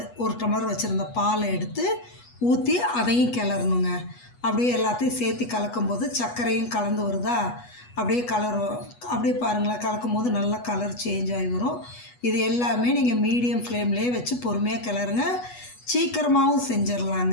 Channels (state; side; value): late; right; 8.2 ms